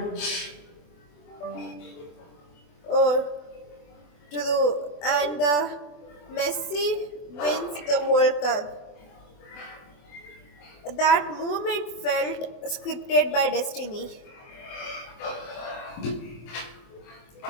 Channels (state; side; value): late; right; 24 ms